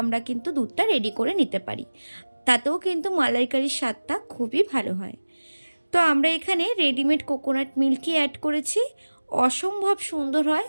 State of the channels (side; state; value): both; inverted; correlation -1.00